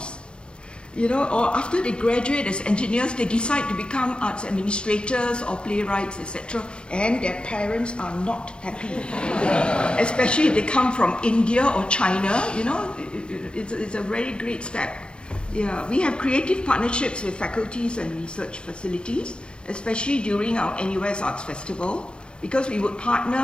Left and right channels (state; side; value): late; right; 0.054 ms